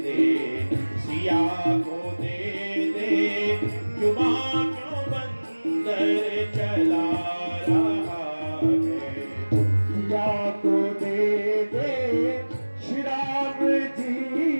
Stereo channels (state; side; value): inverted; both; correlation -1.00